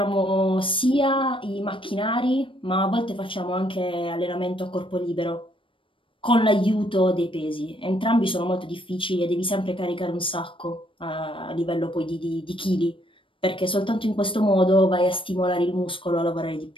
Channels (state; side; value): late; right; 0.25 ms